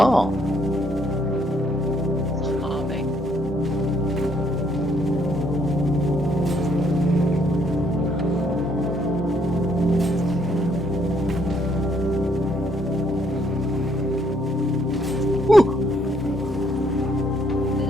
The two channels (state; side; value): normal; both; correlation 0.69